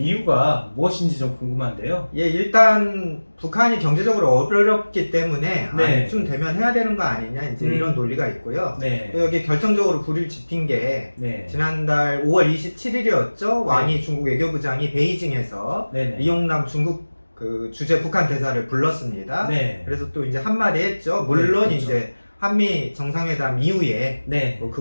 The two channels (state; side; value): inverted; both; correlation -1.00